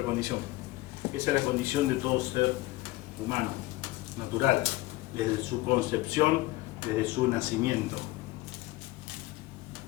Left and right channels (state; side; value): quieter; right; 18.6 dB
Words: condición. Esa es la condición de todo ser humano, natural, desde su concepción, desde su nacimiento.